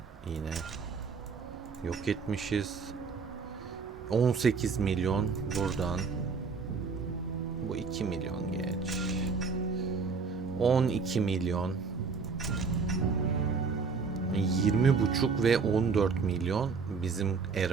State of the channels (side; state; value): left; quieter; 5.0 dB